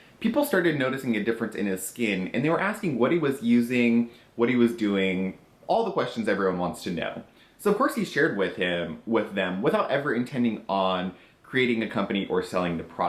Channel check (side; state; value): both; identical; correlation 1.00